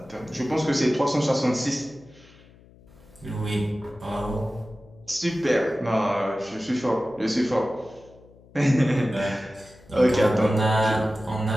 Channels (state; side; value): noise; left; hum, 25 dB below the sound